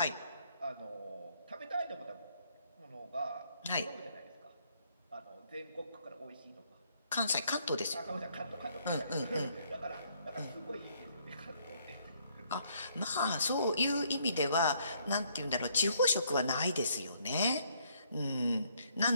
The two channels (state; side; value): inverted; both; correlation -0.68